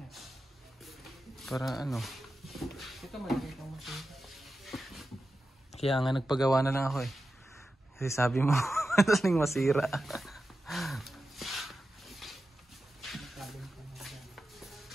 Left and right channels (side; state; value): both; normal; correlation 0.91